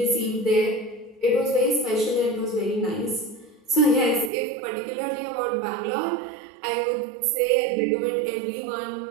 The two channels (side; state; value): left; drops out; at 4.3 s